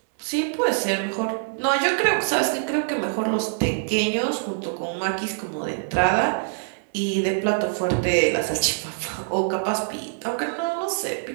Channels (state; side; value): silent; left; digital silence